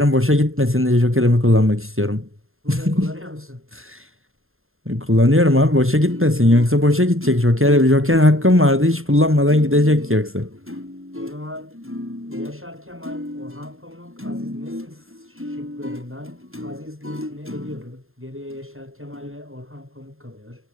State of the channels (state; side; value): late; left; 0.61 ms